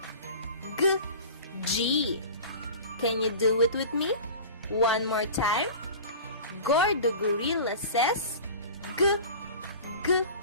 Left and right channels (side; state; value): both; inverted; correlation -0.37